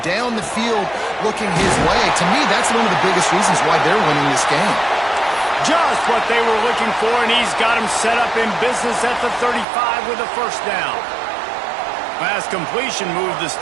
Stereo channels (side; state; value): left; drops out; at 9.7 s